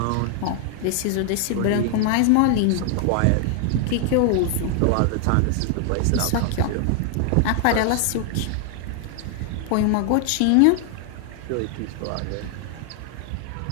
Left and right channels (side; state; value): both; different; correlation 0.00